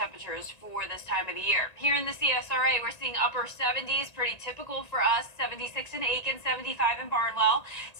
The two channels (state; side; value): late; right; 1.8 ms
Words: for this time of the year. Here in the CSRA, we're seeing upper 70s, pretty typical for us. 76 in Aiken, 75 in Barnwell,